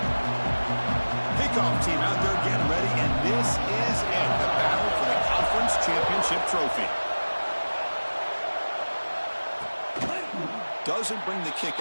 Kickoff team out there getting ready, and this is it, the battle for the Conference Championship trophy. Doesn't bring the kick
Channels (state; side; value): inverted; both; correlation -1.00